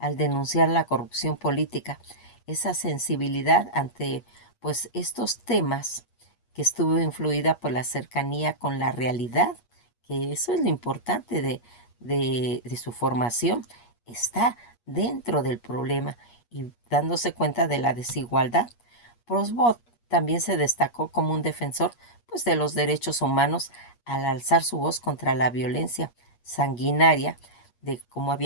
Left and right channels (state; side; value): late; right; 8.4 ms